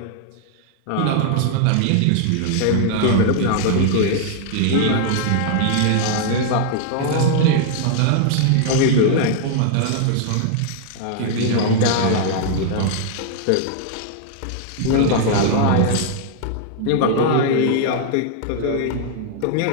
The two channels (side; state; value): both; different; correlation -0.01